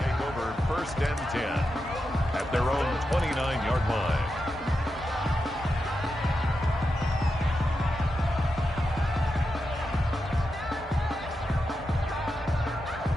Take over 1st and 10 at their own 29-yard line.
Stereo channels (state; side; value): normal; both; correlation 0.88